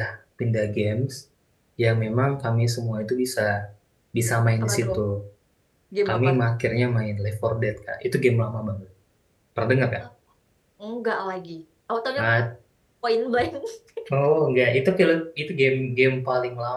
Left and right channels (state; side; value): identical; both; correlation 1.00